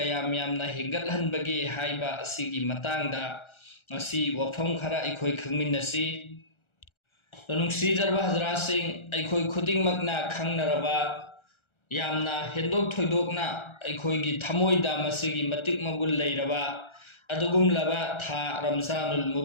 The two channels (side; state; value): right; late; 1.3 ms